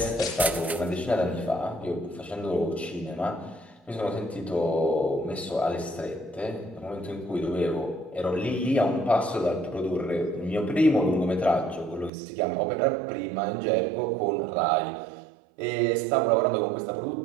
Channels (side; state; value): left; drops out; at 12.1 s